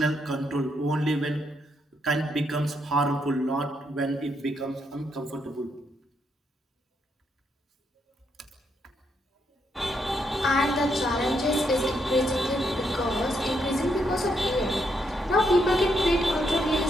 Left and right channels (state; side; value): normal; both; correlation 0.78